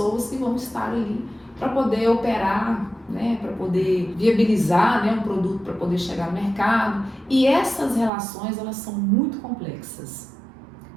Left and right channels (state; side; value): drops out; left; at 8.1 s